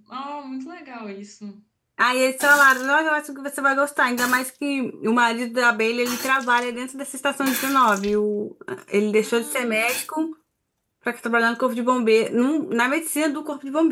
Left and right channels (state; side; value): identical; both; correlation 1.00